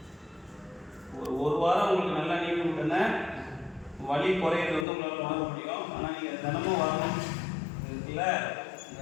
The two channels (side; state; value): right; drops out; at 4.9 s